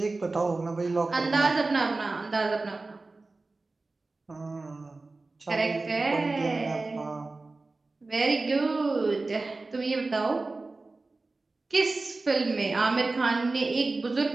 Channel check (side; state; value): left; quieter; 3.4 dB